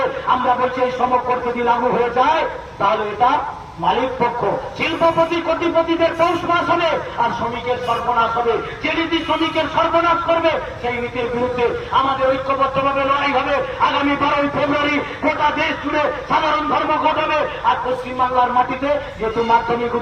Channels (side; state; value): both; identical; correlation 1.00